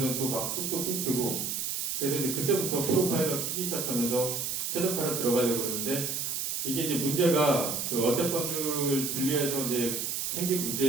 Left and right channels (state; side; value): noise; right; hiss, 2 dB below the sound